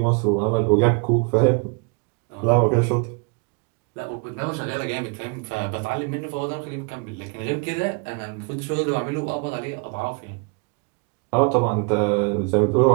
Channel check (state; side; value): quieter; left; 32.9 dB